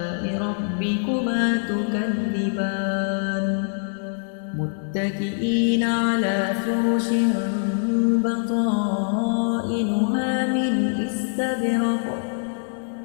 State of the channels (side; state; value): right; silent; 58 dB below the other